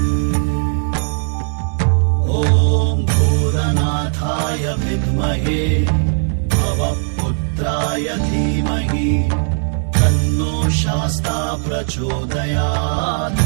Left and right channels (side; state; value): left; silent; 68 dB below the other